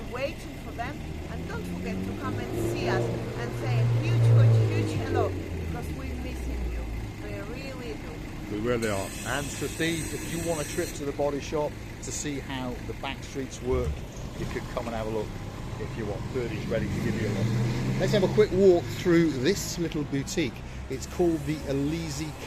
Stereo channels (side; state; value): both; identical; correlation 1.00